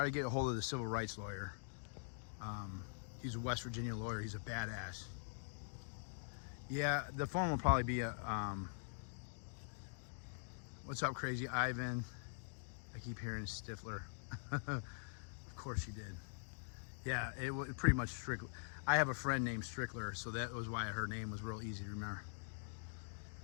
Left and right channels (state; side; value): silent; right; digital silence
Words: to get a hold of the civil rights lawyer. He's a West Virginia lawyer. He's a badass. Yeah, the phone will probably be a. What's up, Crazy Ivan? I keep hearing Stifler. Of course you did. Yeah, it was pretty much Strickler. I have a friend named Strickler, so that was why her name was real easy to remember.